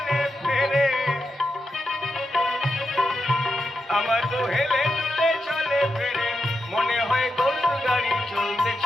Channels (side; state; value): both; normal; correlation 0.86